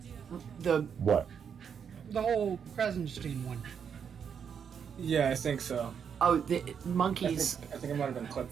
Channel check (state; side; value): quieter; left; 7.3 dB